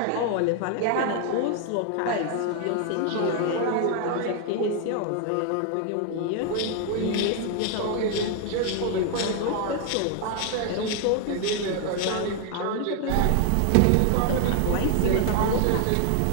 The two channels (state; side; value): different; both; correlation 0.00